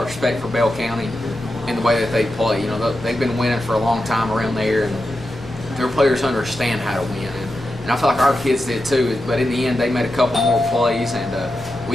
of respect for Bell County and the way that they play. They've been winning for a long time around there, and their players understand how to win. And I feel like our kids did too. But in the end, they made a couple more plays, and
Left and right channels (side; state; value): left; noise; hum, 18 dB below the sound